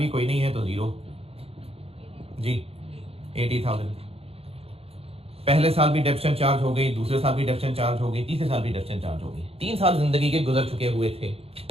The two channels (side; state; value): left; late; 0.28 ms